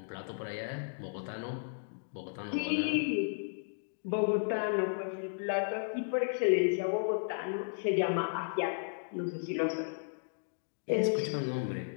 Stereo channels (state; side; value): silent; right; digital silence